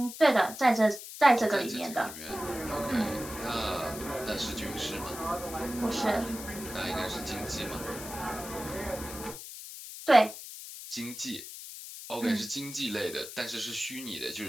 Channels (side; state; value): left; noise; hiss, 11 dB below the sound